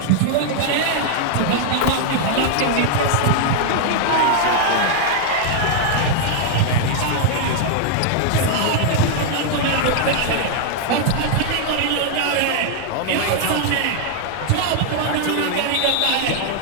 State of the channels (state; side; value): different; both; correlation 0.00